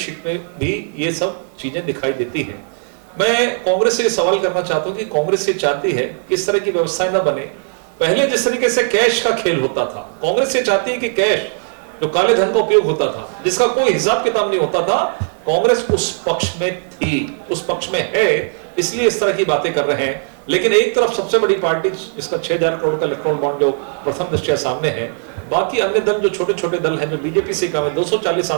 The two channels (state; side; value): silent; left; digital silence